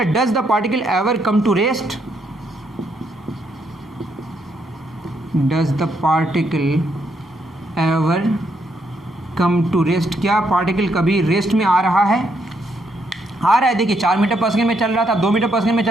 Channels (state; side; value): normal; both; correlation 0.75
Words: does the particle ever come to rest, does the particle ever come to rest, क्या पार्टिकल कभी रेस्ट में आ रहा है, आ रहा है। देखिए 4 मीटर पर सेकंड में चल रहा था, 2 मीटर पर सेकंड में